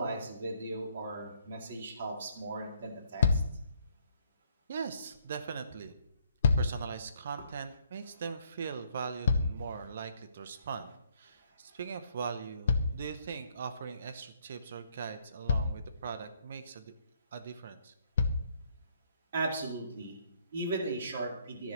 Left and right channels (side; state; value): both; inverted; correlation -0.68